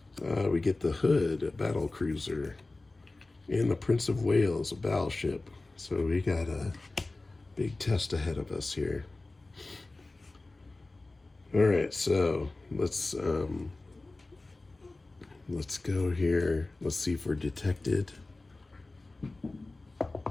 We get the Hood, a battle cruiser, and the Prince of Wales, a battleship. So we got a big test ahead of us here. All right, so let's go here. Let's see if we're detected.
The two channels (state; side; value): quieter; right; 3.1 dB